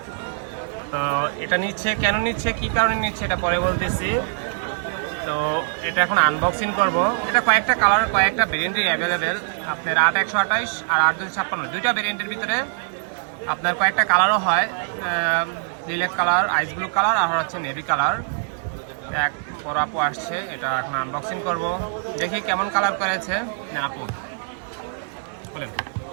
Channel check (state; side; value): silent; left; digital silence